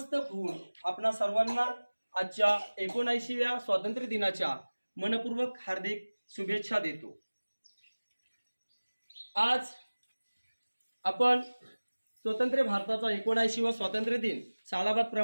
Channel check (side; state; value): both; inverted; correlation -1.00